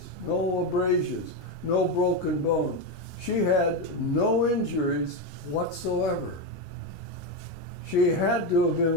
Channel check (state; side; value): normal; both; correlation 0.11